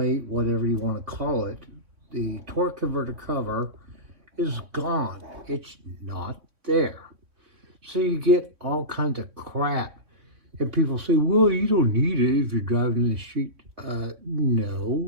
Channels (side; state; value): left; late; 3.3 ms